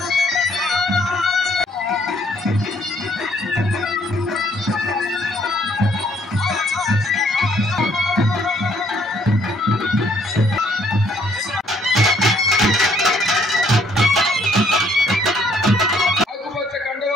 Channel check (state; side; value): normal; both; correlation 0.65